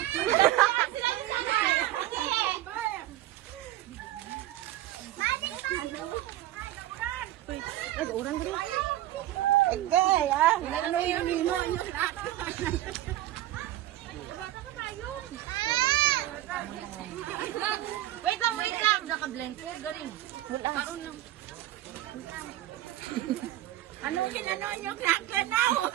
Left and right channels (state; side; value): quieter; left; 14.5 dB